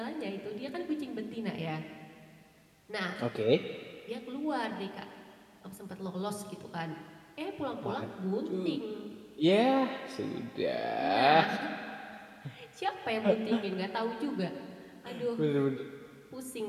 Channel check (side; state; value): both; identical; correlation 1.00